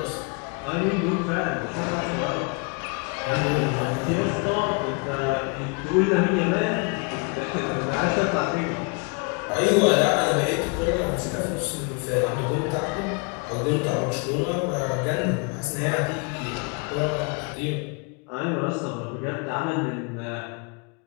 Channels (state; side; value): quieter; right; 33.7 dB